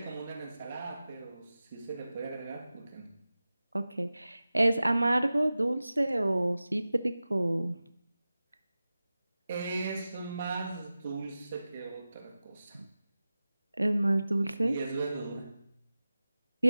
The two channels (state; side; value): inverted; both; correlation -0.95